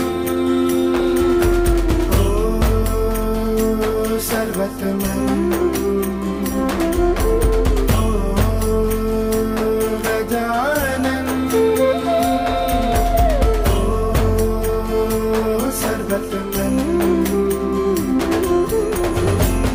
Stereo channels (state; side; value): identical; both; correlation 1.00